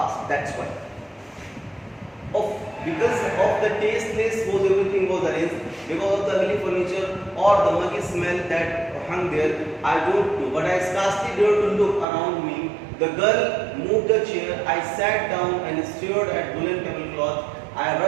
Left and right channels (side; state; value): left; drops out; at 12.1 s